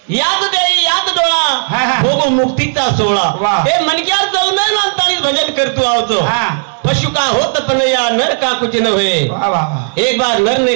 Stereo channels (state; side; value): silent; left; digital silence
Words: याद देई याद डोळा भोगो मुक्तीचा सोहळा हे मनक्यात जाऊन नांताळी भजन करतो आवतो पशु का होत पण या नर का कुछ न होए एक बार नर ने